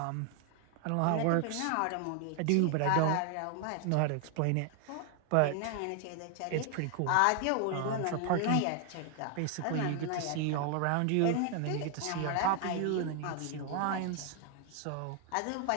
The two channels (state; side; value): different; both; correlation 0.00